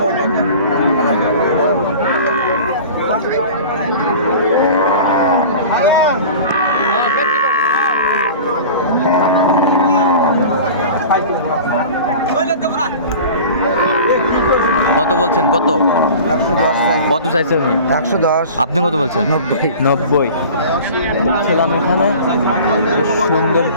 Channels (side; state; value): both; inverted; correlation -0.39